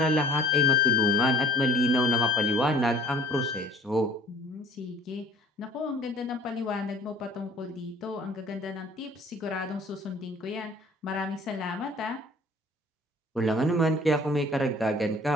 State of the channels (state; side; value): normal; both; correlation 0.49